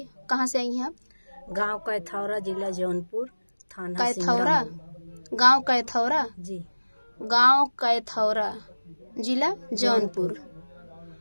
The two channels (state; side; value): inverted; both; correlation -1.00